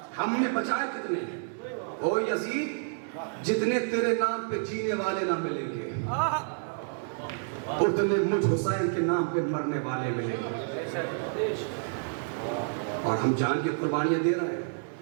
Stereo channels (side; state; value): left; silent; digital silence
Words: ہم نے بچائے کتنے. او یزید جتنے تیرے نام پہ جینے والے نہ ملیں گے اتنے مجھ حسین کے نام پہ مرنے والے ملیں گے. اور ہم جان کی قربانیاں دے رہے ہیں,